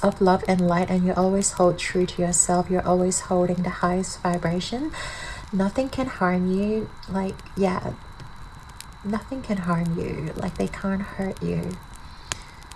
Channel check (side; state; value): both; identical; correlation 1.00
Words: of love and light and you always hold true to yourself, you're always holding the highest vibration, nothing can harm you. Like, yeah, nothing can harm you. Like, they can't hurt you.